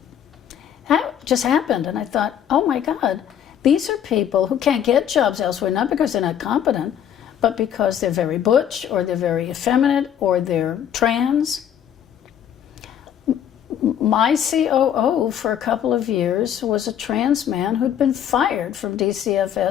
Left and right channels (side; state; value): right; quieter; 9.6 dB